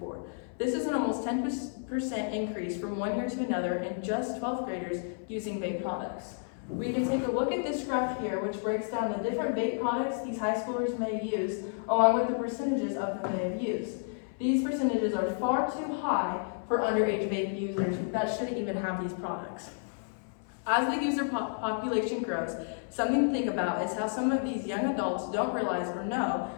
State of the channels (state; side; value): silent; right; 57 dB below the other